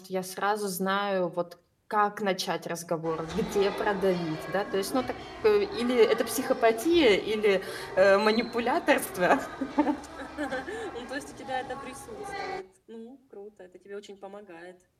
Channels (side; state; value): both; identical; correlation 1.00